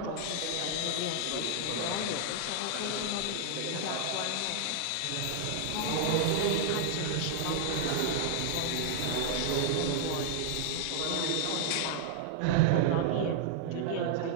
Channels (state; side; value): different; both; correlation -0.01